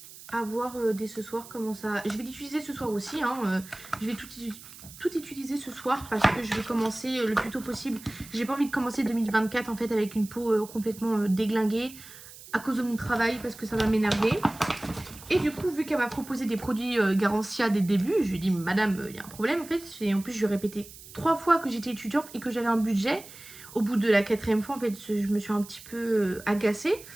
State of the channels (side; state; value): right; noise; hiss, 17 dB below the sound